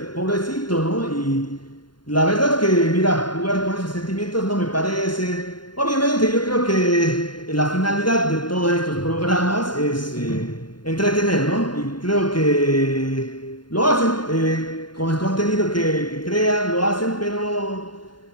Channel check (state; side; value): late; right; 0.71 ms